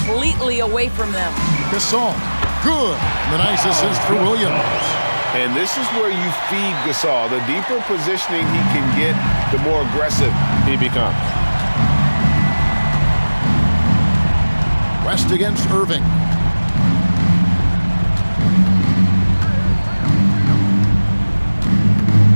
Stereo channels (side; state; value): both; inverted; correlation -1.00